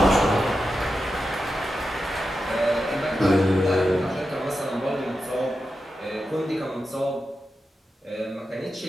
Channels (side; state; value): both; normal; correlation 0.90